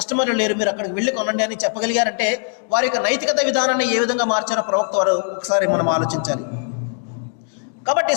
లేరు, మీరు అక్కడికి వెళ్ళి కొనండి అని చెప్పగలిగారంటే వారి యొక్క నైతికత విధానాన్ని ఏ విధంగా మార్చారో ప్రవక్త వారు ఒకసారి మనం ఆలోచించాలి. కాబట్టి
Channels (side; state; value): right; silent; 56 dB below the other